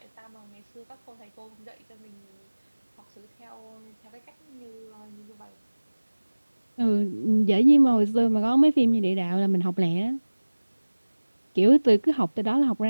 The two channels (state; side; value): inverted; both; correlation -1.00